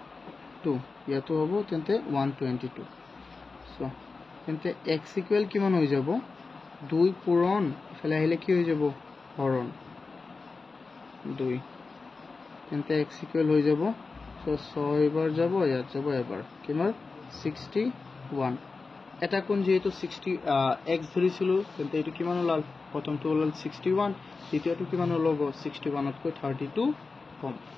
ইয়াতো হ'ব তেন্তে 122 so তেন্তে x equal কিমান হৈ যাব 2 পূৰণ ইফালে আহিলে কি হৈ যাব হৰণ 2 তেন্তে x equal হৈ যাব so 6 বাৰ যাব ইয়াত যাব এবাৰ কিমান 61 এটা কোণ যেহেতু 60 x ধৰিছিলো তেন্তে এটো কিমান ওলাল প্ৰথমটো ওলাল 61, দ্বিতীয়টো কিমান ওলাব 61তকৈ 32 কম,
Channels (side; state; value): right; quieter; 4.2 dB